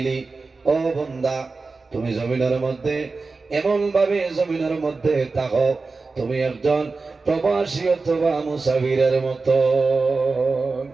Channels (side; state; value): left; quieter; 4.0 dB